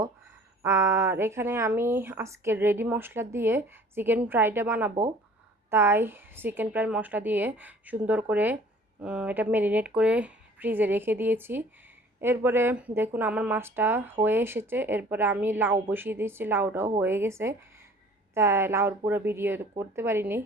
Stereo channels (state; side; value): normal; both; correlation 0.51